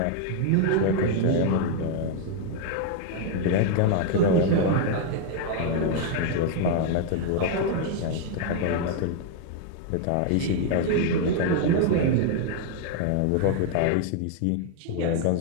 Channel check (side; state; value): both; different; correlation 0.00